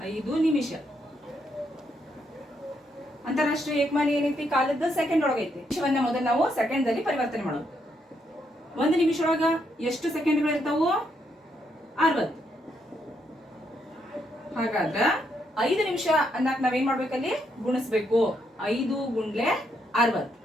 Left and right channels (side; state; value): both; normal; correlation 0.77